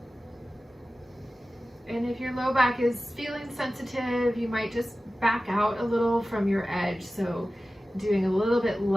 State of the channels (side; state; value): both; normal; correlation 0.95